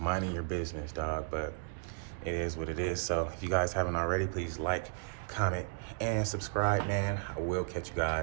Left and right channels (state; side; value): silent; left; digital silence